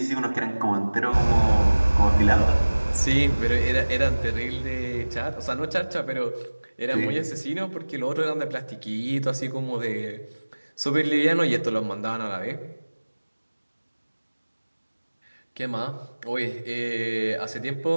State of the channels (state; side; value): inverted; both; correlation -1.00